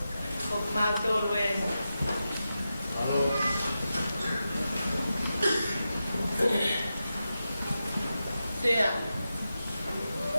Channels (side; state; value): both; inverted; correlation -0.90